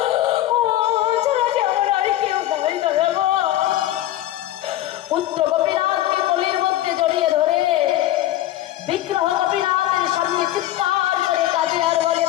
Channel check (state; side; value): quieter; right; 13.9 dB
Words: পুত্র গোপীনাথকে কোলের মধ্যে জড়িয়ে ধরে বিগ্রহ গোপীনাথের সামনে চিৎকার করে কাঁদে আর বলে,